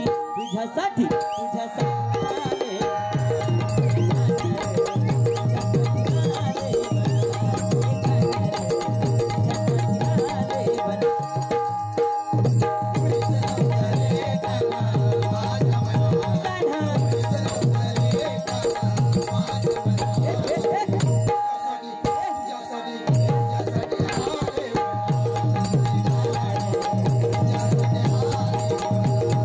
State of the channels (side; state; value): both; identical; correlation 1.00